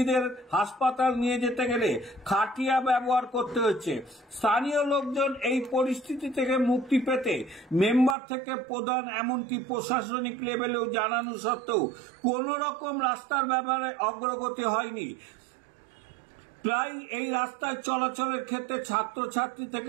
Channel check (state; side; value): drops out; left; at 8.2 s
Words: হাসপাতাল নিয়ে যেতে গেলে খাটিয়া ব্যবহার করতে হচ্ছে। স্থানীয় লোকজন এই পরিস্থিতি থেকে মুক্তি পেতে মেম্বার থেকে প্রধান এমনকি প্রশাসনিক লেভেলেও জানানো সত্ত্বেও কোন রকম রাস্তার ব্যাপারে অগ্রগতি হয়নি। প্রায় এই রাস্তায় চলাচলের ক্ষেত্রে ছাত্রছাত্রী